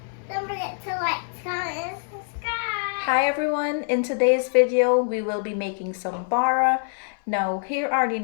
Don't forget to like, comment, and subscribe. Hi everyone, in today's video we will be making some bara. Now here are the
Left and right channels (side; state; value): right; silent; 58 dB below the other